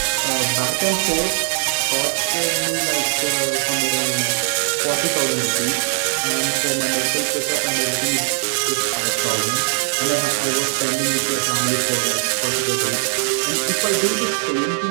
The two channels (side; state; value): left; silent; 65 dB below the other